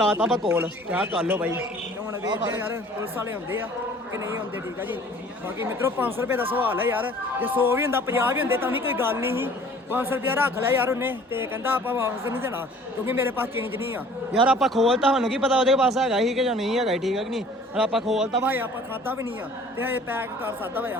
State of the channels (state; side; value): normal; both; correlation 0.51